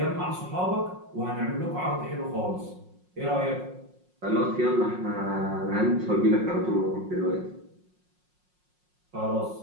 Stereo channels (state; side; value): late; left; 5.5 ms